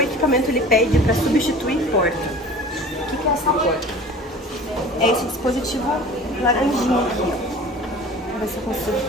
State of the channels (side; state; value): both; normal; correlation 0.42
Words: equipamento ele pede para substituir porta. O que é essa porta? É esse dispositivo laranjinho aqui, ó. Vou ver se eu consigo